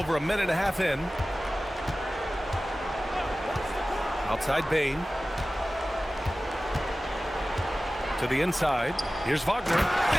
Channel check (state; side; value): normal; both; correlation 0.96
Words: a minute and a half in. Outside Bane. To the inside. Here's Wagner.